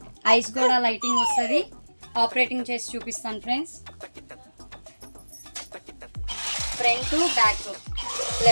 ఐస్ కూడా లైటింగ్ వస్తుంది. ఆపరేటింగ్ చేసి చూపిస్తాను friends. Front back,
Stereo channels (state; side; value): inverted; both; correlation -1.00